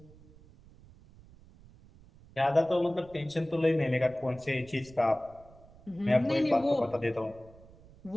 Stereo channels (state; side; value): noise; right; rumble, 23 dB below the sound